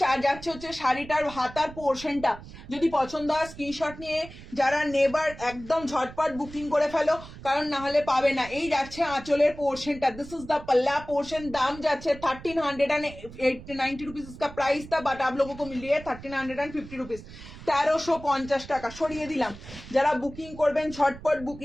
যাচ্ছে হচ্ছে শাড়িটার হাতার পোর্শনটা। যদি পছন্দ হয় স্ক্রিনশট নিয়ে যারা নেবার একদম ঝটপট বুকিং করে ফেলো, কারণ না হলে পাবে না। এই যাচ্ছে আঁচলের পোর্শনটা, দিস इज द पल्ला पोर्शन। दाम যাচ্ছে 1390 रुपीज इसका प्राइस था, बट आप लोगों को मिल रही है 1350 रुपीज, 1350 টাকা। সরিয়ে দিলাম। যারা বুকিং করবেন ঝটপট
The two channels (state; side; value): noise; right; rumble, 16 dB below the sound